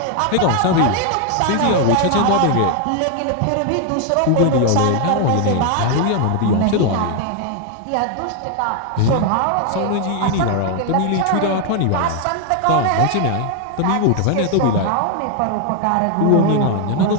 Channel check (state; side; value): different; both; correlation 0.00